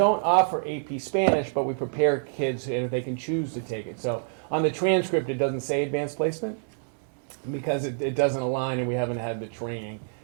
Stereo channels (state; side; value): silent; left; digital silence